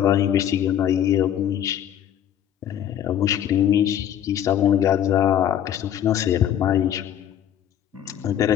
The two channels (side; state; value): right; quieter; 10.3 dB